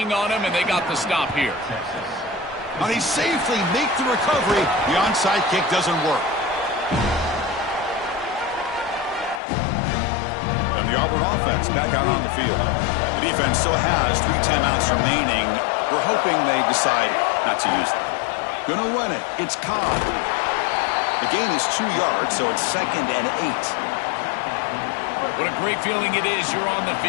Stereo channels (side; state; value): right; drops out; at 9.4 s